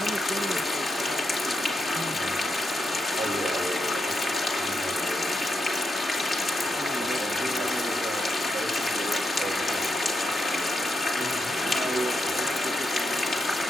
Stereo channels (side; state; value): both; normal; correlation 0.84